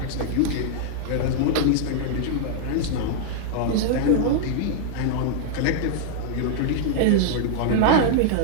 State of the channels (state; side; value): different; both; correlation -0.01